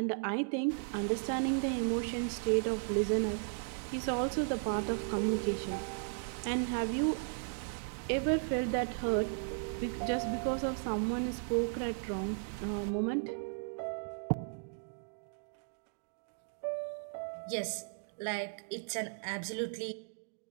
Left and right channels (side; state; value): left; silent; digital silence